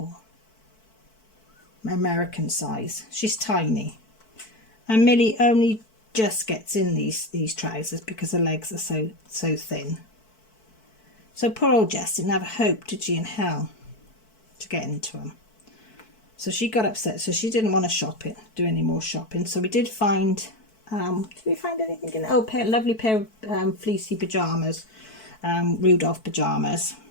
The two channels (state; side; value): late; right; 4.6 ms